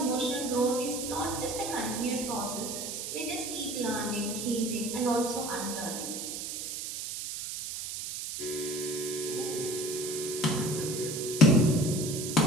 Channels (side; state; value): right; noise; hiss, 5 dB below the sound